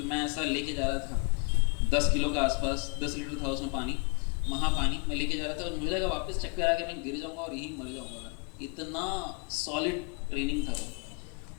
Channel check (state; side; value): quieter; right; 36.2 dB